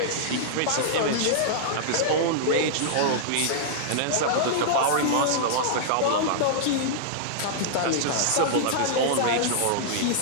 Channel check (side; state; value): both; different; correlation -0.02